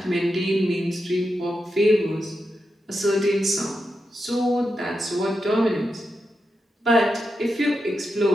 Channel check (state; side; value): normal; both; correlation 0.87